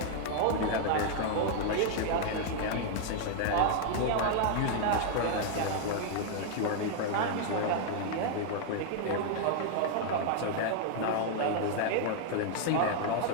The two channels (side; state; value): both; different; correlation 0.00